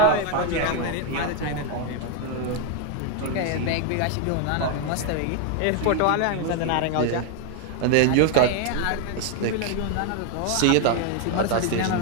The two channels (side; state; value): both; different; correlation 0.01